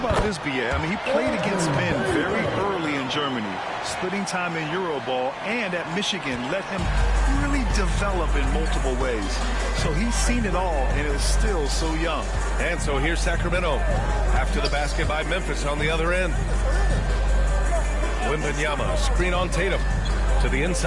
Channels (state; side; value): identical; both; correlation 1.00